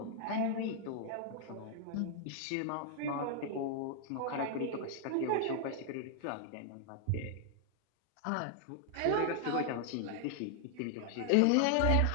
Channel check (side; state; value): both; different; correlation 0.00